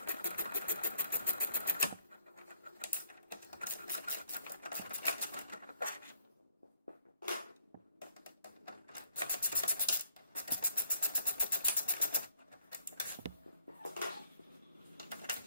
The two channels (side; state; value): both; inverted; correlation -0.64